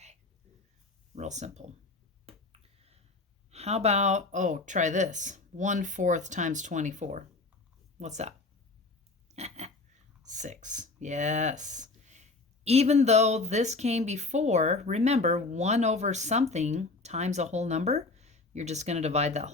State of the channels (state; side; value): quieter; right; 3.5 dB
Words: Real simple. How about, try this. 1/4 times 24. What's that? 6. Yes. Even though this came before, remember, 1 over something times a whole number, you're just going to divide that